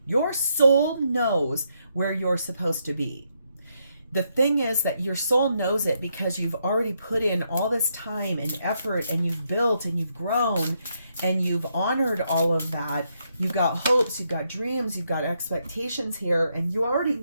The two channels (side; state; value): both; inverted; correlation -0.78